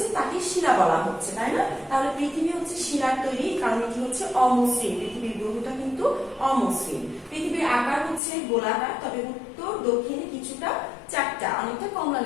তাকে শিলা বলা হচ্ছে, তাই না? তাহলে পৃথিবী হচ্ছে শিলার তৈরি, কারণ এটি হচ্ছে অমসৃণ। পৃথিবীর গ্রহটা কিন্তু অমসৃণ। পৃথিবীর আকার হচ্ছে গোলাকার, তবে উত্তর দক্ষিণে কিছুটা চারটা, অনেকটা কমলা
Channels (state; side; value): drops out; right; at 8.2 s